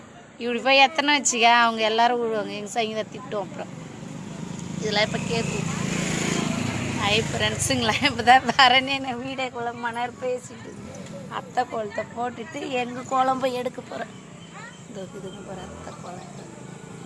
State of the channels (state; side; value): identical; both; correlation 1.00